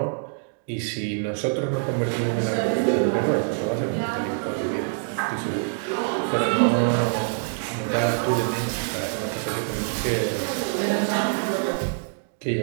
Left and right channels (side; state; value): left; silent; digital silence